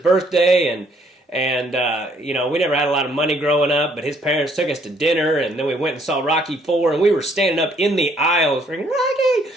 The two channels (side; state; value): both; normal; correlation 0.65